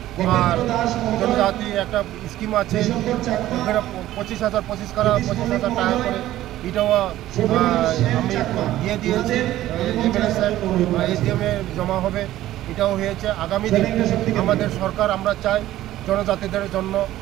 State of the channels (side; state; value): left; quieter; 14.4 dB